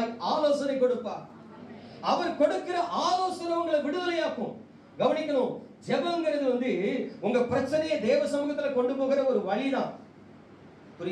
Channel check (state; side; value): identical; both; correlation 1.00